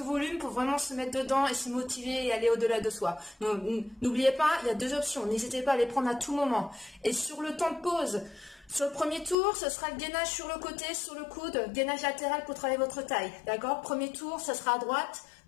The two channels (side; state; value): right; drops out; at 9.3 s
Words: volume pour vraiment se mettre dedans et se motiver et aller au-delà de soi. N'oubliez pas, il y a 2 options. N'hésitez pas à les prendre à tout moment. Et sur le temps de pause, sur le premier tour, ce sera le gainage sur le côté, sur le coude, gainage latéral pour travailler votre taille. D'accord? Premier tour, ça sera à droite.